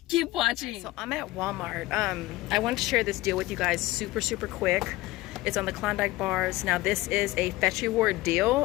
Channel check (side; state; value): right; quieter; 18.7 dB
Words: keep watching. So I'm at Walmart. I wanted to share this deal with you guys super quick. It's on the Klondike bars. Now this is a Fetch Reward